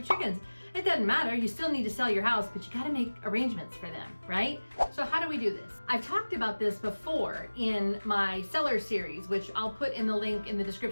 chickens. It doesn't matter, you still need to sell your house, but you gotta make arrangements for them, right? So how do we do this? I've talked about this before in my seller series, which I'll put in the link in the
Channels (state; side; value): inverted; both; correlation -1.00